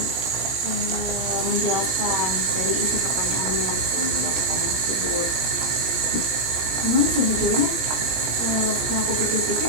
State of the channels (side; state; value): left; late; 17 ms